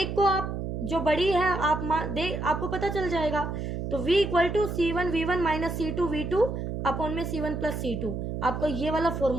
को आप जो बड़ी है आपको पता चल जाएगा। तो V = C1V1 minus C2V2 upon में C1 प्लस C2, आपको ये वाला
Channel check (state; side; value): noise; right; hum, 4 dB below the sound